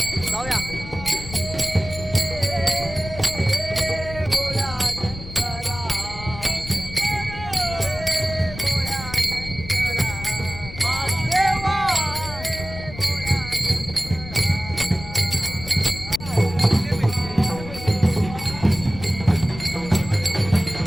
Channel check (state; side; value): noise; left; rumble, 12 dB below the sound